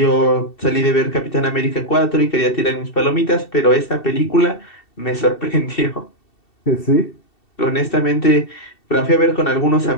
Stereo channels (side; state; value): right; late; 2.7 ms